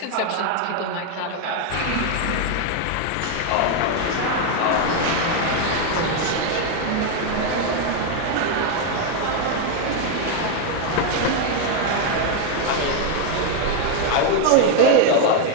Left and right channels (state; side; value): different; both; correlation 0.01